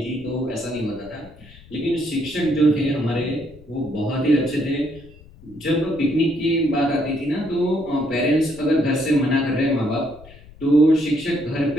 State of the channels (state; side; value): noise; left; rumble, 22 dB below the sound